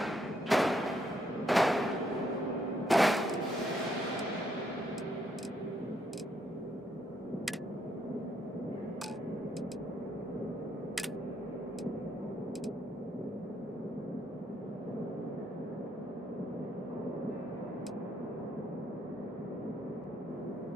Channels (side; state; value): both; normal; correlation 0.73